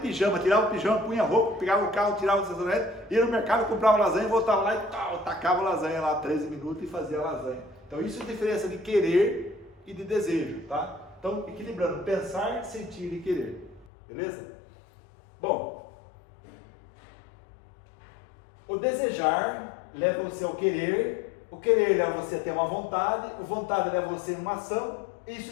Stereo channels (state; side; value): drops out; right; at 13.9 s